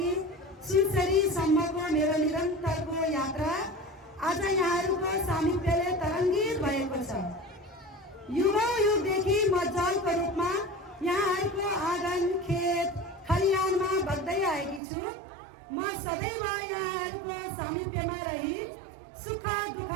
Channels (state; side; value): drops out; left; at 14.8 s